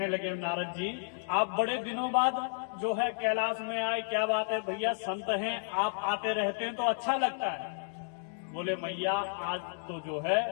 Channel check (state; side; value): silent; right; digital silence